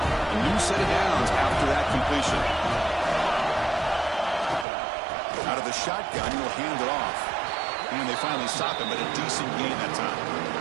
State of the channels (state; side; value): drops out; left; at 4.7 s